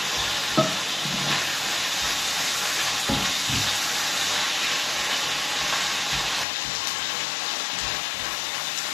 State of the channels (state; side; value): drops out; right; at 6.5 s